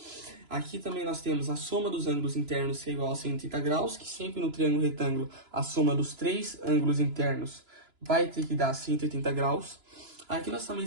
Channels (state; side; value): late; left; 2.9 ms